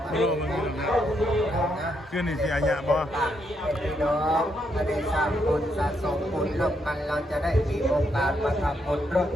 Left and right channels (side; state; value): both; normal; correlation 0.78